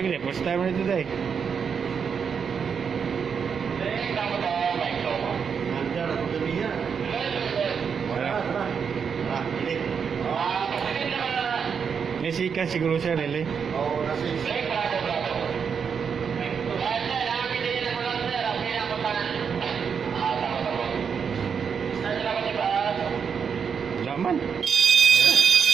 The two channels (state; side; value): quieter; left; 6.6 dB